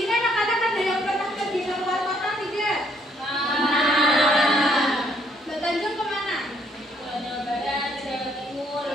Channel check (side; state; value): both; normal; correlation 0.68